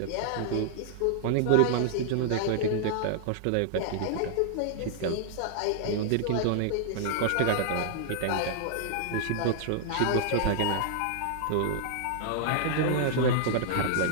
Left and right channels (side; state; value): both; different; correlation -0.01